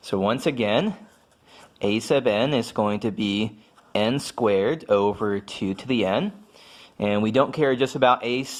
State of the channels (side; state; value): both; identical; correlation 1.00